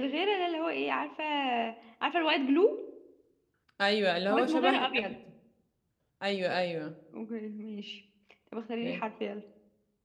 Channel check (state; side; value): identical; both; correlation 1.00